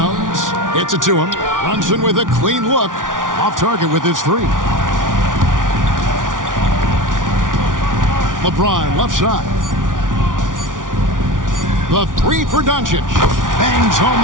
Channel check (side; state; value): left; late; 0.88 ms